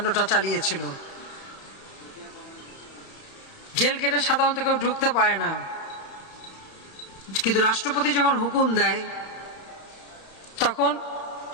চালিয়েছিল। জেল গেটে সাধারণত কেউ ঢুকতে পারে না, কিন্তু রাষ্ট্রপতি যখন হুকুম দেয় তখন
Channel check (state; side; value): late; right; 32 ms